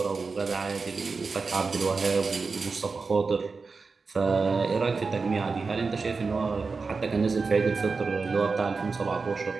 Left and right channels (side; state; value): left; quieter; 4.5 dB